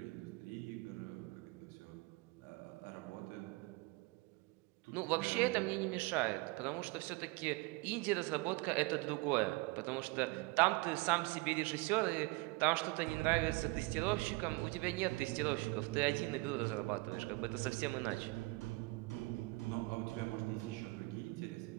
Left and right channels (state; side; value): quieter; left; 24.1 dB